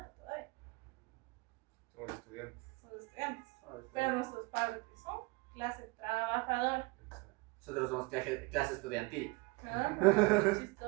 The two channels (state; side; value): quieter; left; 25.4 dB